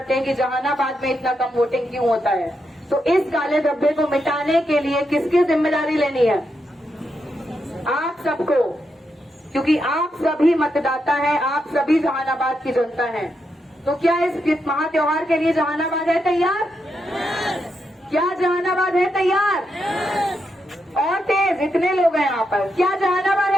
हैं कि जहानाबाद में इतना कम वोटिंग क्यों होता है। तो इस काले धब्बे को मिटाने के लिए किसकी जिम्मेदारी लेनी है? आप सबको, क्योंकि आप सभी मतदाता हैं, आप सभी जहानाबाद की जनता हैं। तो क्या इस महा त्योहार के लिए जहानाबाद है तैयार? क्या जहानाबाद है तैयार? और तेज, इतने लोग हैं यहाँ पर, क्या जहानाबाद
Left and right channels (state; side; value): normal; both; correlation 0.83